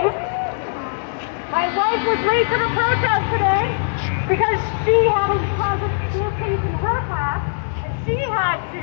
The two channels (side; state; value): right; silent; 65 dB below the other